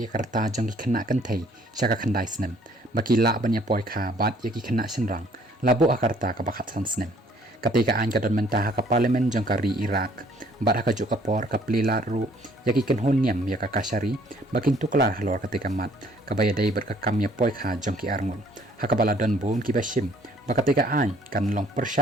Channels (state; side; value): normal; both; correlation 0.60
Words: karta jang ki khna kan thei sha ka khandai snem baki la ban ya poi kha bat ya ki khna senrang labo akarta ka bakhat san snem ketika an ka don menta ha ka parlimen jang kari Iraq bat ha ka ju ka por ka plila ru ya ki ken honyam ya ka kasari bakin tuklar halor ketika mat ka baya dai bat ka kam ya poi kha jang ki arngun ha ka bala don bon ki bashim bakatika an kan long